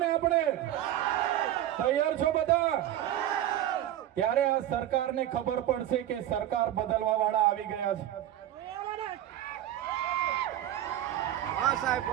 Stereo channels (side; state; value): left; quieter; 12.5 dB